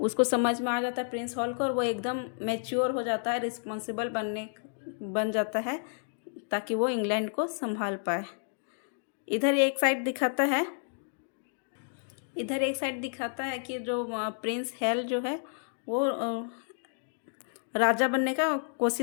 समझ में आ जाता है प्रिंस हॉल को, और वो एकदम मैच्योर हो जाता है, रिस्पॉन्सिबल बन जाता है ताकि वो इंग्लैंड को संभाल पाए। इधर एक साइड दिखाता है कि जो प्रिंस हेल जो है वो राजा बनने का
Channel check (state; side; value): silent; right; digital silence